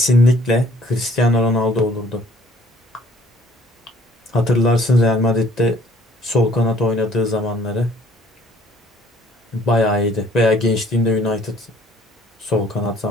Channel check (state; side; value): normal; both; correlation 0.58